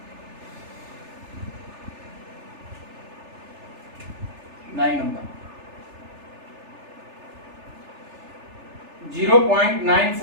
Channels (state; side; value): late; left; 3.4 ms